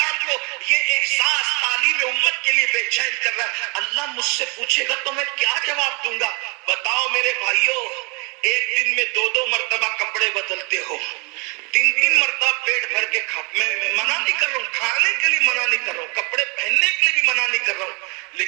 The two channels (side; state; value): left; quieter; 31.6 dB